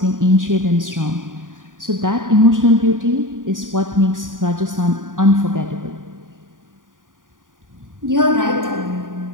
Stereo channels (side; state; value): left; late; 0.89 ms